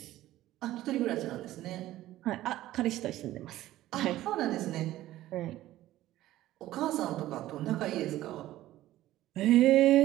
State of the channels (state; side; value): quieter; left; 14.9 dB